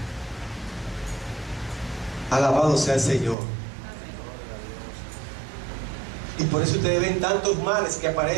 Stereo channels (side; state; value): left; drops out; at 3.4 s